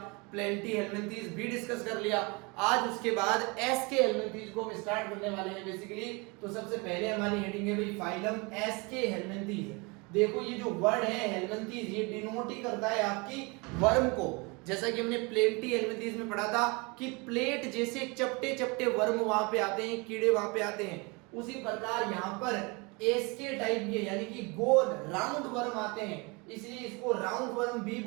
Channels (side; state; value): left; quieter; 28.4 dB